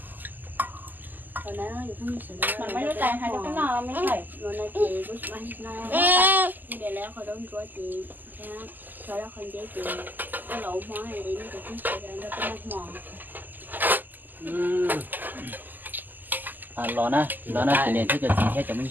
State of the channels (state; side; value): late; left; 0.086 ms